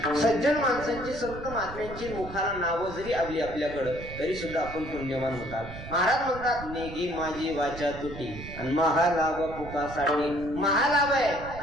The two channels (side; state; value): right; noise; rumble, 12 dB below the sound